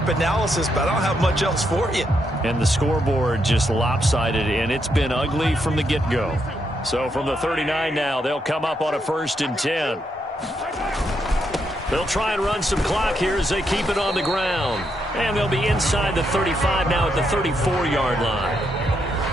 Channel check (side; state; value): both; normal; correlation 0.79